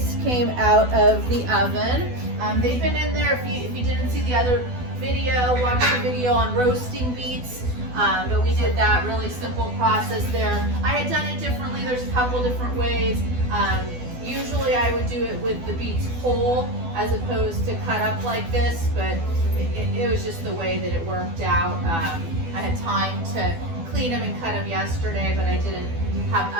came out of the oven. They've been in there, if you didn't see the other video, watch the video on roasting beets. But we did that really simple process there. I had done it differently. There's a couple different ways. Usually I would do it with the beets whole as opposed to cut up like this, but it was just the way that it worked out. I had time to clean them and cut them yesterday, but I didn't have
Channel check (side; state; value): left; late; 12 ms